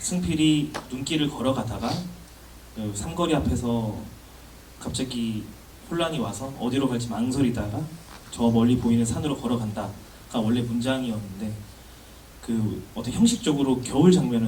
눈길을 걸어가다가 그 삼거리 앞에서 갑자기 혼란이 와서 어디로 갈지 망설이다가 저 멀리 보이는 산으로 걸어간다가 원래 문장이었는데 그 어떤 형식적으로 겨울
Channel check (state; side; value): identical; both; correlation 1.00